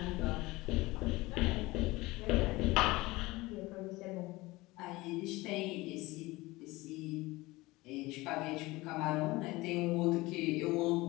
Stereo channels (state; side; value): quieter; right; 20.8 dB